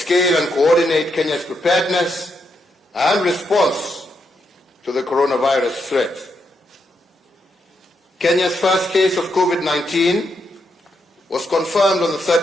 and coordinate Kenya's preparedness and response to the coronavirus threat. Kenya's first case of COVID-19 was confirmed on the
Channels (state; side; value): normal; both; correlation 0.80